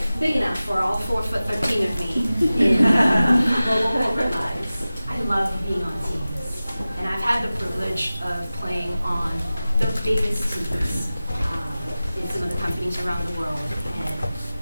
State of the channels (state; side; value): inverted; both; correlation -0.96